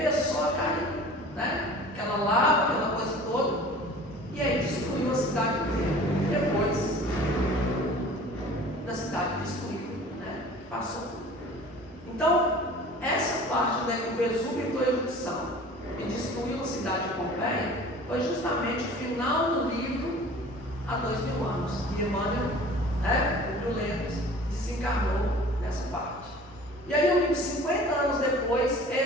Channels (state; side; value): normal; both; correlation 0.44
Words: a cair, né? Aquela lava, aquela coisa toda, e aí destruiu a cidade inteira. Depois da cidade destruída, né? Passou. Então, essa parte da que o Vesúvio entrou em erupção e destruiu a cidade de Pompeia foi justamente o final do livro há 2000 anos. E Emmanuel, né, Publio Lentulus, desencarnou nessa parte. E aí o livro 50 anos depois